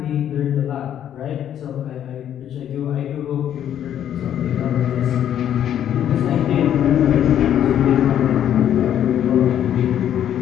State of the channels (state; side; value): quieter; right; 10.3 dB